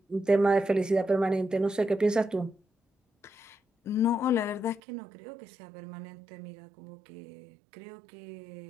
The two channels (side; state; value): left; drops out; at 4.8 s